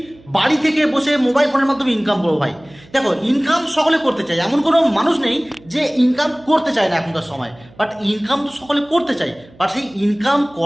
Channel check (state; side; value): noise; right; hum, 25 dB below the sound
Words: বাড়ি থেকে বসে মোবাইল ফোনের মাধ্যমে ইনকাম করবো। ভাই দেখো, ইনকাম সকলে করতে চায়, এমন কোনো মানুষ নেই যে ইনকাম করতে চায় না এখনকার সময়। বাট ইনকাম তো সকলে করতে চায়, বাট সেই ইনকাম